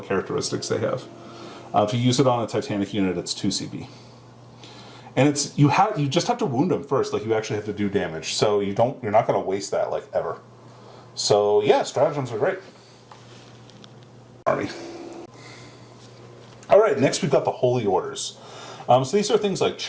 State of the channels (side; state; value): both; identical; correlation 1.00